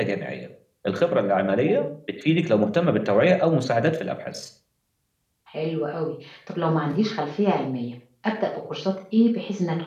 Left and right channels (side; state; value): both; identical; correlation 1.00